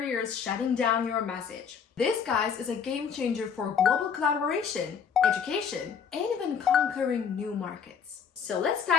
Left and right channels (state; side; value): quieter; right; 6.9 dB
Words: shutting down your message. This, guys, is a game changer for global collaboration, education, and even conquering new markets. So let's